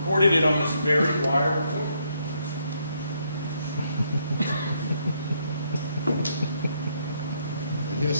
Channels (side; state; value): both; inverted; correlation -0.73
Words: it on this very wire recorder. And here's